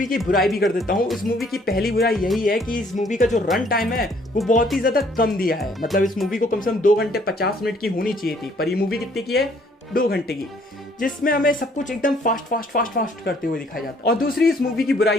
की बुराई भी कर देता हूँ। इस मूवी की पहली बुराई यही है कि इस मूवी का जो रन टाइम है वो बहुत ही ज्यादा कम दिया है। मतलब इस मूवी को कम से कम 2 घंटे 50 मिनट की होनी चाहिए थी, पर ये मूवी कितने की है, 2 घंटे की, जिसमें हमें सब कुछ एकदम फास्ट करते हुए दिखाया जाता है। और दूसरी इस मूवी की बुराई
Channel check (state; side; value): normal; both; correlation 0.62